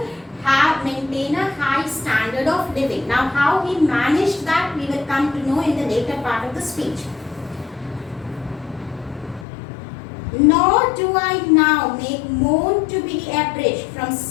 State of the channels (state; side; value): drops out; right; at 9.5 s